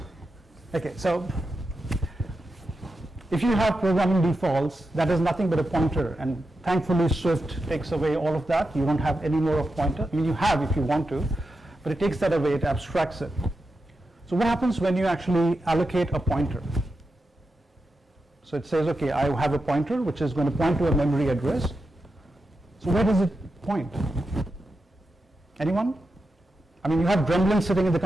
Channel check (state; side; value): normal; both; correlation 0.89